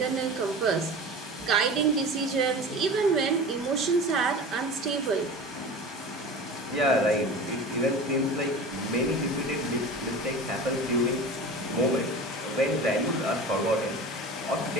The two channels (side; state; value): both; normal; correlation 0.34